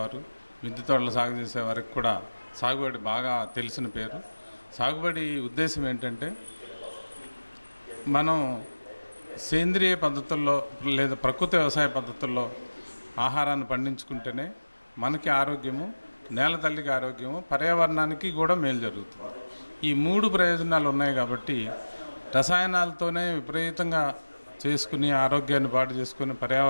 మిద్దె తోటలు సాగు చేసేవారికి కూడా సాగుబడి బాగా తెలిసిన పేరు. సాగుబడి ఉద్దేశం ఏంటంటే, మనం సేంద్రియ పద్ధతుల్లో లేదా ప్రకృతి వ్యవసాయ పద్ధతుల్లో ఆహారాన్ని పండించుకుంటేనే మనకి ఆరోగ్యము, నేల తల్లికి ఆరోగ్యము, పర్యావరణానికి కూడా మేలు జరుగుతుంది. ఈ 3 ప్రయోజనాలు ఉన్నాయి కాబట్టి రసాయనాలతోనే విపరీతంగా చేసుకుని ఆరోగ్యాన్ని పాడు చేసుకుని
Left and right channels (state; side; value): inverted; both; correlation -1.00